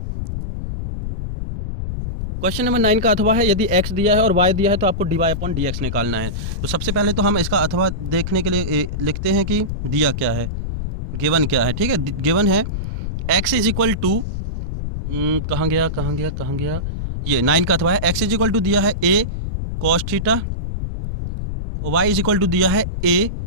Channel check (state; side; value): noise; left; rumble, 4 dB below the sound